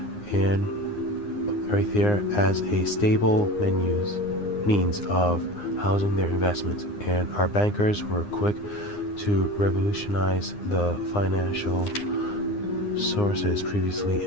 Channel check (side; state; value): right; late; 9.7 ms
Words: as a stable means of housing their investments, and our bankers were quick to revolutionize the financial sources previously